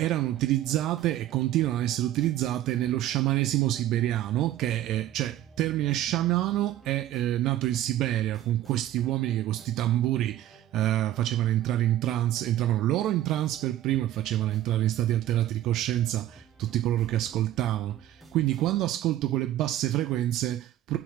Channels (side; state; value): left; quieter; 13.3 dB